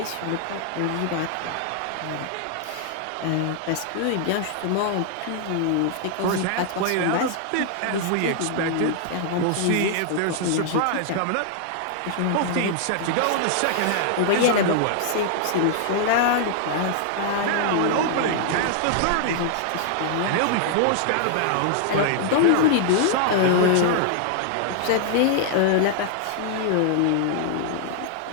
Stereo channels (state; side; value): different; both; correlation -0.01